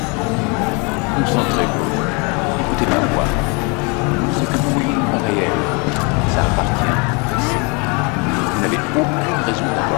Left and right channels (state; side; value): quieter; right; 31.4 dB